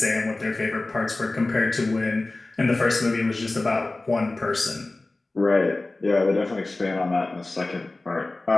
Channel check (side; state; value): right; quieter; 3.0 dB